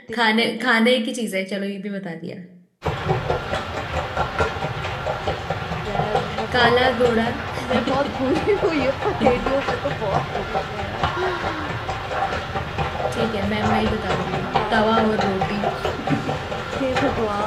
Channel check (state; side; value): identical; both; correlation 1.00